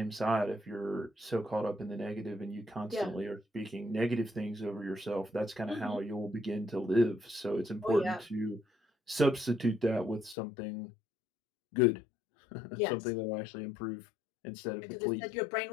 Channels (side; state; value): right; drops out; at 10.4 s